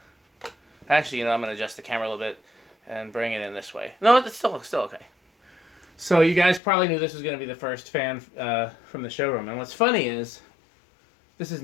Actually, I'm going to adjust the camera a little bit and bring it in this way. No, it's still okay. So you guys probably knew this was going to be the first fan from the Showroom. And what's funny is, this is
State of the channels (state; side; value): drops out; right; at 6.6 s